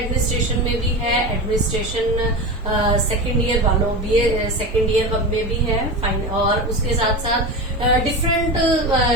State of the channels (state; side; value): normal; both; correlation 0.24